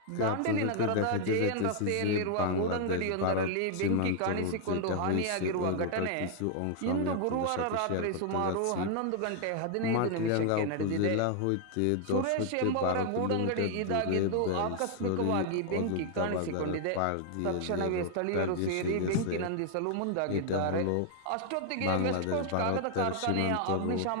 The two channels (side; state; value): both; different; correlation 0.00